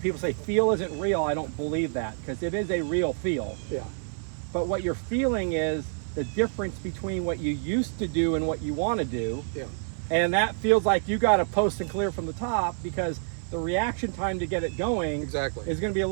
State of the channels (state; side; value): silent; left; 60 dB below the other